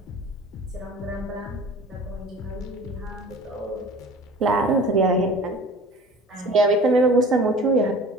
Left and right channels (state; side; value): normal; both; correlation 0.43